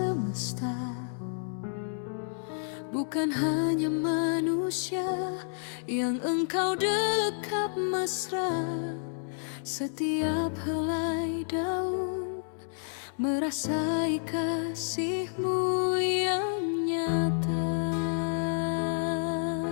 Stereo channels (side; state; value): right; silent; 58 dB below the other